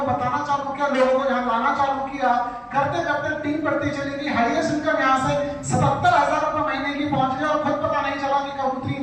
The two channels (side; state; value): both; identical; correlation 1.00